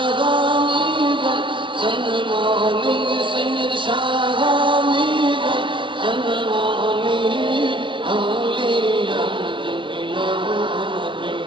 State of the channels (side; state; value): left; late; 0.24 ms